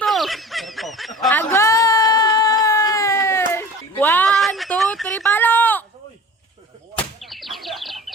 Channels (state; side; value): normal; both; correlation 0.40